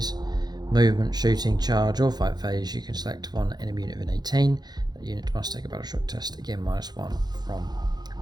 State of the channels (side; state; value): left; late; 0.20 ms